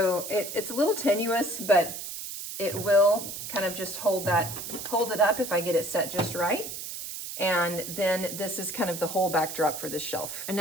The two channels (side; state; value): right; noise; hiss, 8 dB below the sound